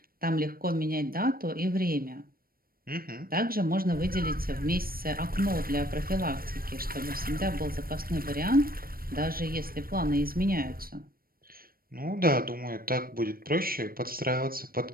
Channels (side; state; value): left; late; 0.43 ms